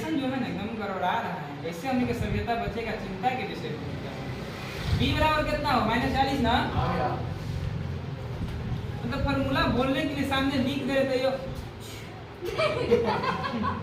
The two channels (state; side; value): identical; both; correlation 1.00